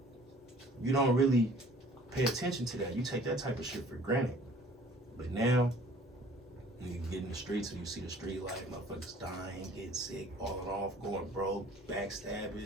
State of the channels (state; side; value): normal; both; correlation 0.52